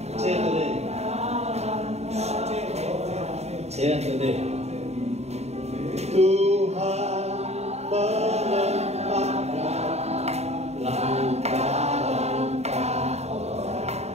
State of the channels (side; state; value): left; late; 0.31 ms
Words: Saya sedih. Tuhan menempatkan langkah-langkah